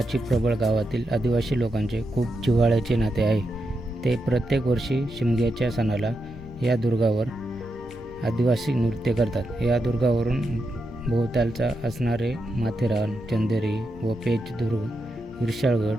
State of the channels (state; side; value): normal; both; correlation 0.86